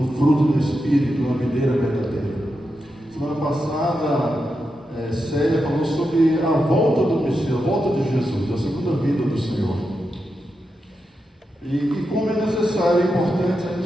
fruto do Espírito, uma videira verdadeira. Semana passada, Célia falou sobre a volta do Messias, a volta de Jesus, a segunda vinda do Senhor. E como é necessário, é importante a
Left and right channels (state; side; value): normal; both; correlation 0.87